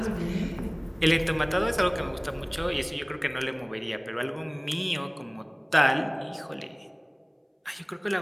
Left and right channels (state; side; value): identical; both; correlation 1.00